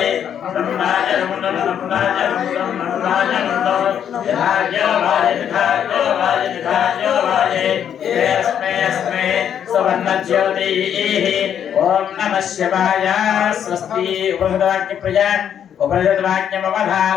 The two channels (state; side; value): quieter; right; 9.0 dB